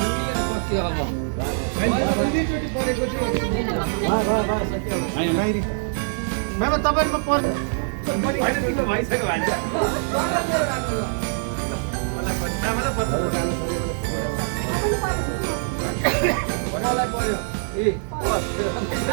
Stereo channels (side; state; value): left; silent; digital silence